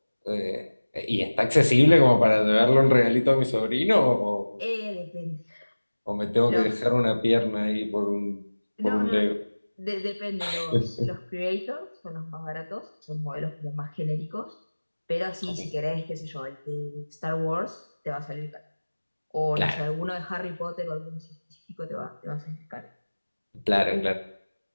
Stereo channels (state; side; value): inverted; both; correlation -1.00